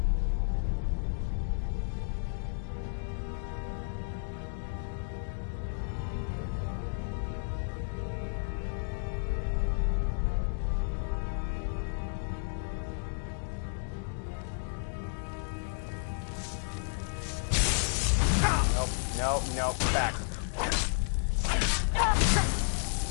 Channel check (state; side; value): silent; right; digital silence